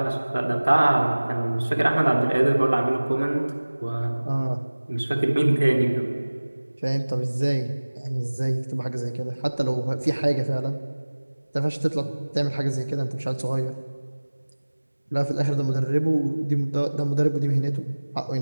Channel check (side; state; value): both; inverted; correlation -1.00